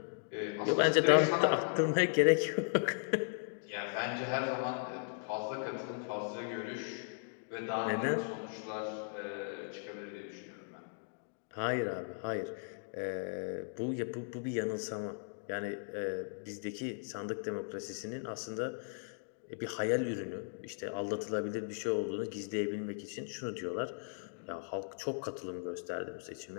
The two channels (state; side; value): silent; right; digital silence